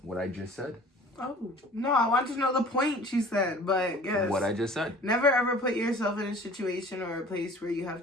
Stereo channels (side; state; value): both; normal; correlation 0.47